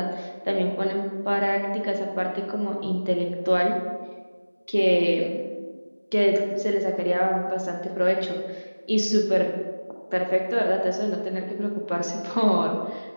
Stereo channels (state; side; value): inverted; both; correlation -1.00